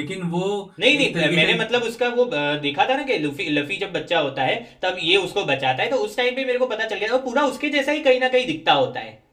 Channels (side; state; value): both; identical; correlation 1.00